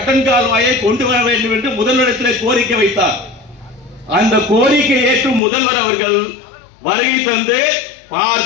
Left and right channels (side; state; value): right; drops out; at 5.4 s